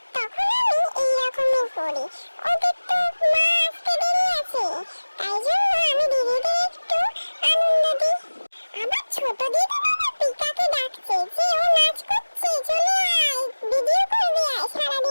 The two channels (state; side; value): inverted; both; correlation -1.00